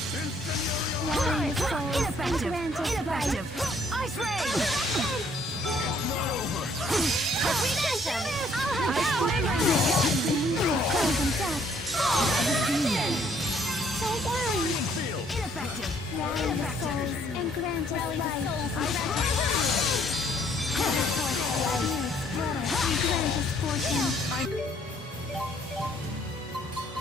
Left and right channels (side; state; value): both; normal; correlation 0.64